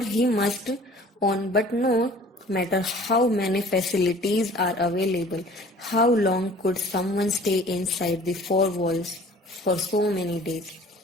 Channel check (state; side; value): normal; both; correlation 0.49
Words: must own. But no matter how many facilities are available, how long could someone stay inside the 4 walls for so many days?